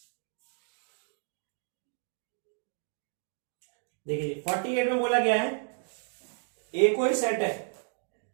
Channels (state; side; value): silent; left; 56 dB below the other